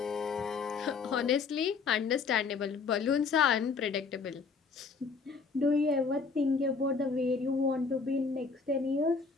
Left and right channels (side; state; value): right; quieter; 5.0 dB